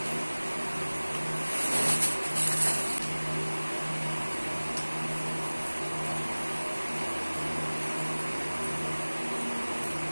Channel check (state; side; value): inverted; both; correlation -1.00